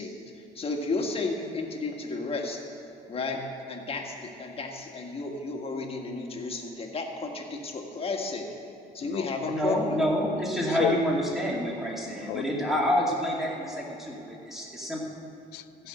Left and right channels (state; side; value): normal; both; correlation 0.55